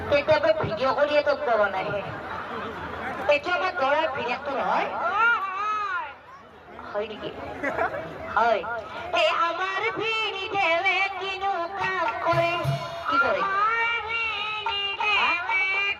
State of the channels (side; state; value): both; identical; correlation 1.00